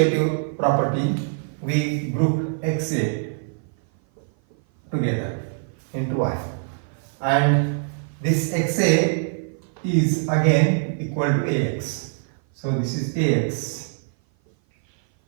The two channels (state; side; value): silent; left; 56 dB below the other